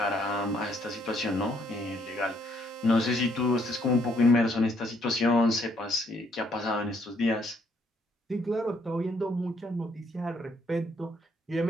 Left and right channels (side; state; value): both; normal; correlation 0.69